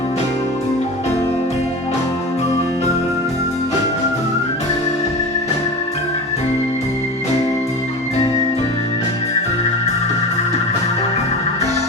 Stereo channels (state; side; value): normal; both; correlation 0.30